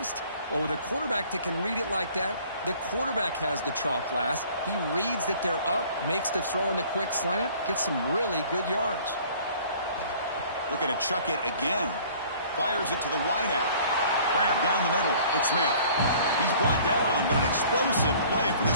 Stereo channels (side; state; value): both; inverted; correlation -0.52